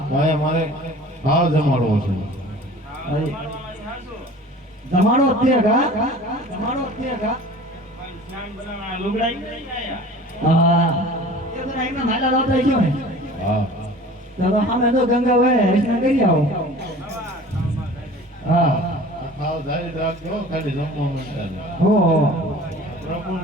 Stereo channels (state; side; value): normal; both; correlation 0.43